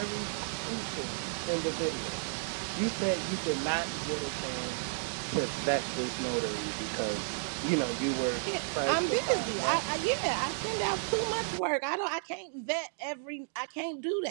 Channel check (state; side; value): silent; left; digital silence